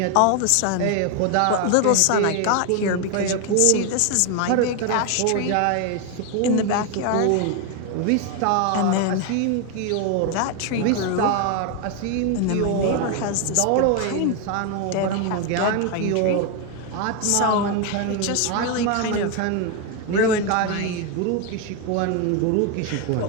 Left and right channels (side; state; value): both; different; correlation 0.01